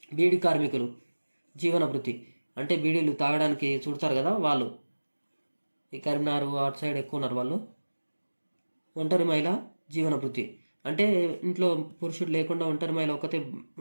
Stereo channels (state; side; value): inverted; both; correlation -1.00